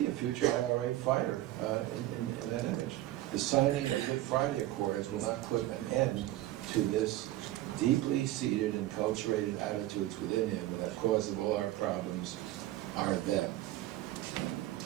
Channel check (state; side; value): quieter; left; 15.4 dB